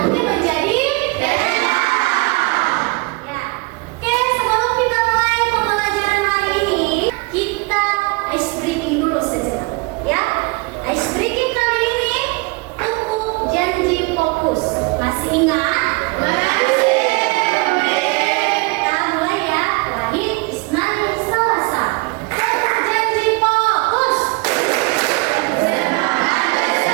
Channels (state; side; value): quieter; left; 27.5 dB